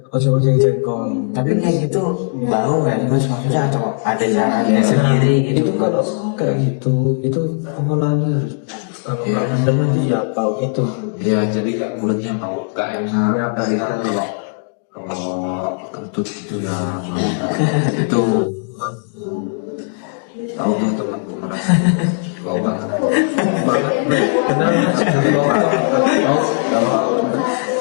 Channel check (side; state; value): right; silent; digital silence